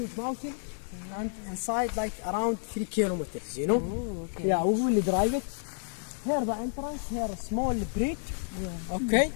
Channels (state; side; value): silent; right; digital silence